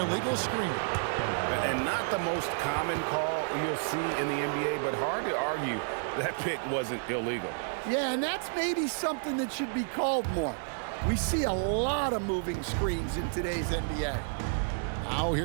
screen. And not the most common call you'll see in the NBA, but hard to argue that pick wasn't illegal. Yeah, and that's maybe something that should be called more. We see a lot of moving screens in today's NBA. Now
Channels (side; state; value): left; silent; digital silence